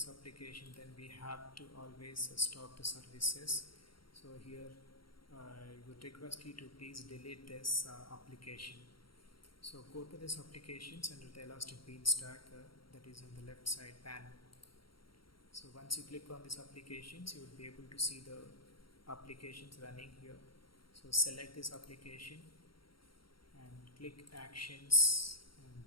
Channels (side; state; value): right; late; 0.73 ms